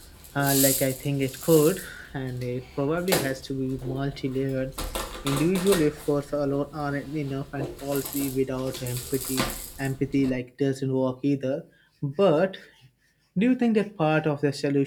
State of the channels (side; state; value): both; identical; correlation 1.00